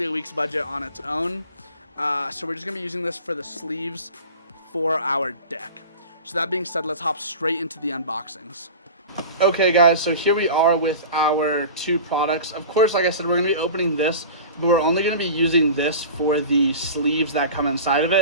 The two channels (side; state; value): both; inverted; correlation -0.35